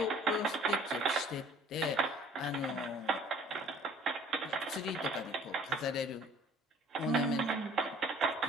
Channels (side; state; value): both; normal; correlation 0.53